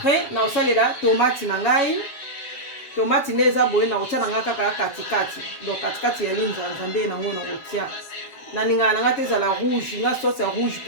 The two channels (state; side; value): late; right; 7.4 ms